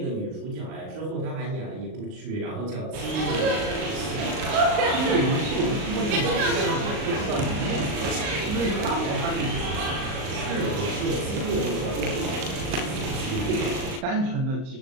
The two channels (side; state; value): left; late; 38 ms